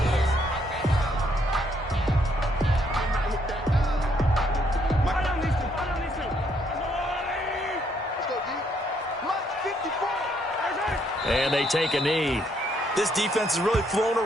And they take a knee. This defense has really flown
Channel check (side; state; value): both; normal; correlation 0.71